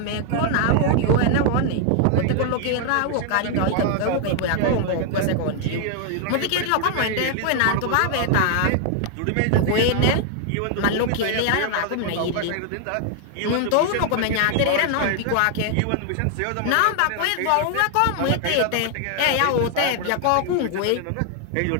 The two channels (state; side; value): different; both; correlation 0.00